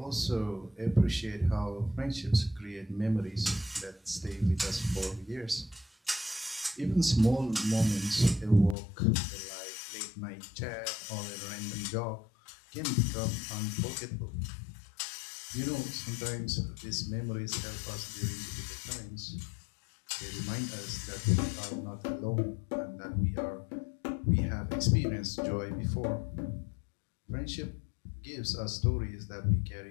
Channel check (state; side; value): drops out; right; at 8.8 s